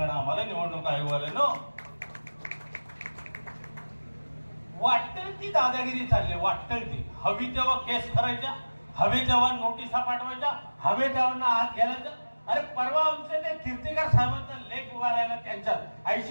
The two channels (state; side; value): inverted; both; correlation -1.00